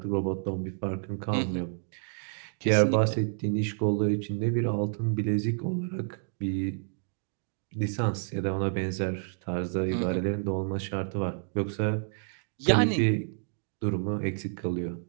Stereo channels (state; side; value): silent; left; digital silence